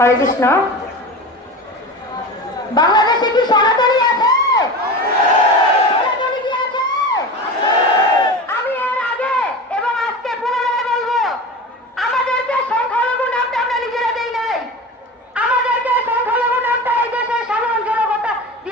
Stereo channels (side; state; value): both; normal; correlation 0.30